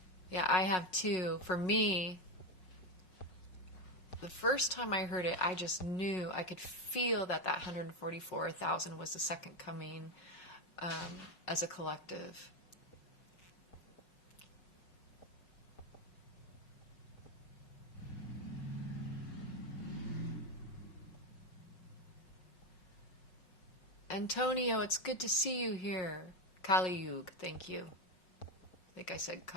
Yeah, I have too. For me, the first time I heard it, I just knew, I could feel that 144,000 was the second coming as a collective. Antonio, it's good to see you here. Kali Yug, thank you. I think I said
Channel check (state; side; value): late; right; 5.5 ms